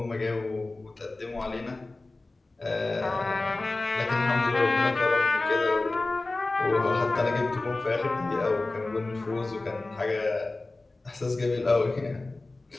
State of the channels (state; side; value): quieter; right; 3.1 dB